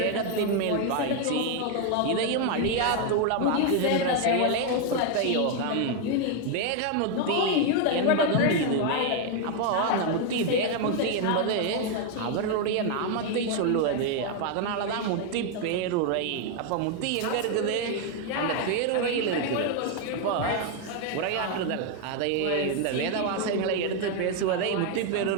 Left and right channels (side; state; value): both; different; correlation 0.01